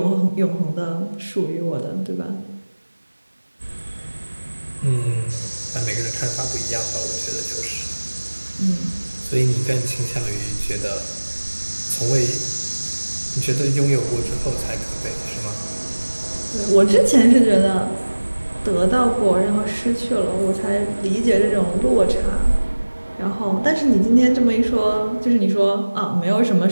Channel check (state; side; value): inverted; both; correlation -1.00